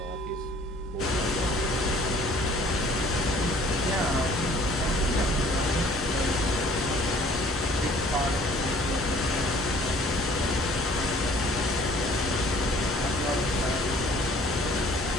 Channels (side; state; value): both; normal; correlation 0.54